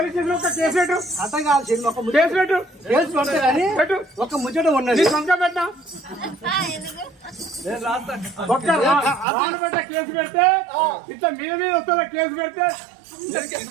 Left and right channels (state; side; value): drops out; left; at 9.2 s